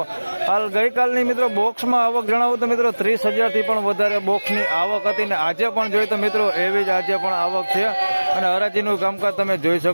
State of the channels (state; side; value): inverted; both; correlation -1.00